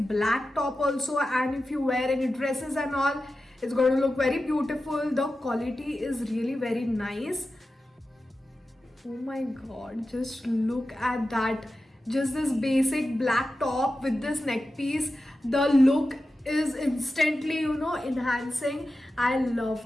black top also, and if you wear any dresses and all, it's going to look very beautiful. The quality is really very nice. Oh my god, just look at that. Just this basic black top with this neck piece. The look is instantly, enhancing. I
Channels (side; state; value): both; normal; correlation 0.92